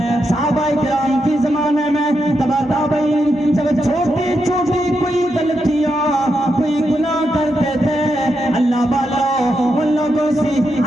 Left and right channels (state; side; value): normal; both; correlation 0.84